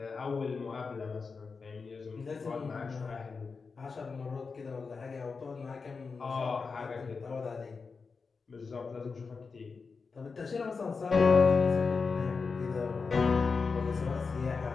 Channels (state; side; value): quieter; right; 4.8 dB